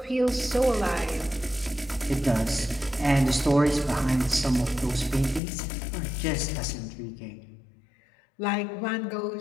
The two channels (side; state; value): right; drops out; at 5.4 s